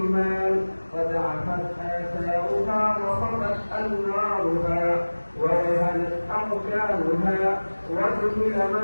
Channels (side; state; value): both; inverted; correlation -1.00